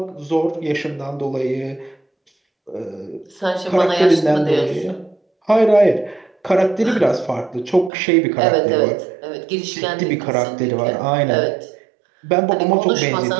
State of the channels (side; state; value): left; drops out; at 7.9 s